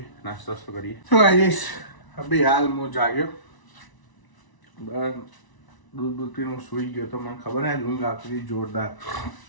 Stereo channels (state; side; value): late; right; 1.0 ms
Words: નાસ્તો કરીએ. તો ગાઈસ અભી હાલ હું જાગ્યો, બસ દૂધ પીને હું સૂઈ ગયો તો મને ખબર નહીં ઊંઘ આવતી હતી જોરદાર.